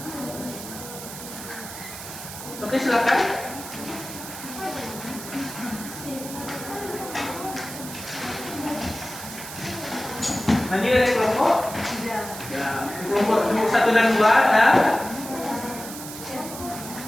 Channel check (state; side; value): noise; right; hiss, 11 dB below the sound